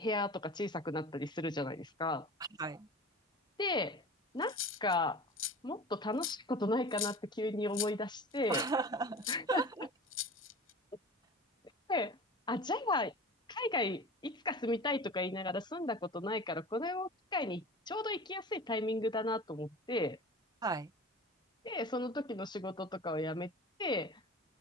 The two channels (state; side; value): normal; both; correlation 0.37